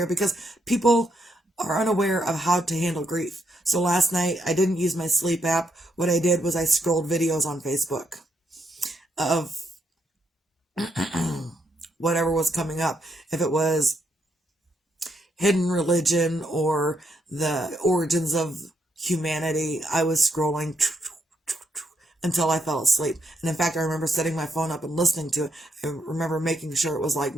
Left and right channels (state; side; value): normal; both; correlation 0.77